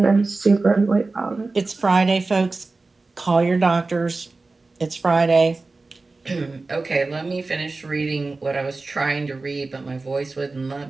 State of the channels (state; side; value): quieter; left; 3.6 dB